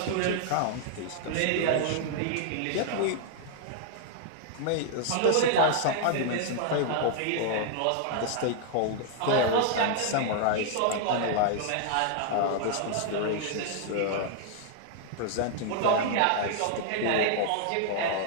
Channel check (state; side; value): different; both; correlation -0.01